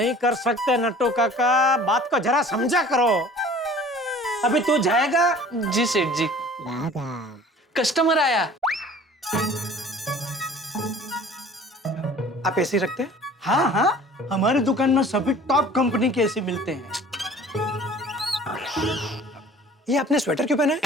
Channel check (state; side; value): normal; both; correlation 0.47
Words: कर सकते नट्टू काका, बात को जरा समझा करो। अभी तू जाएगा? जी सेठ जी। कस्टमर आया। आप एसी रखते हैं? हाँ हाँ, हमारी दुकान में सभी टॉप कंपनी के एसी मिलते हैं। ये आपने स्वेटर क्यों पहना है?